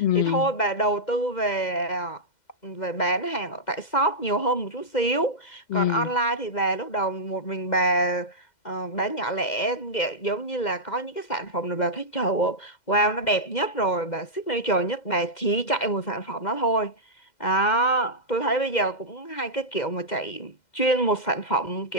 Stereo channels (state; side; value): late; right; 2.1 ms